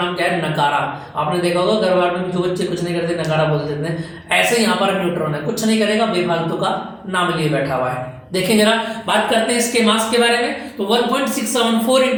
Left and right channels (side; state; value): both; identical; correlation 1.00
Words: क्या है, नकारा। आपने देखा होगा घर बार में जो बच्चे कुछ नहीं करते नकारा बोल देते हैं, ऐसे यहाँ पर न्यूट्रॉन है, कुछ नहीं करेगा, बेफालतू का नाम लिए बैठा हुआ है। देखें जरा, बात करते हैं इसके मास के बारे में। तो 1.674